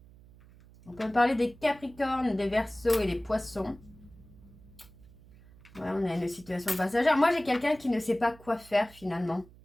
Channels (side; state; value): right; noise; hum, 23 dB below the sound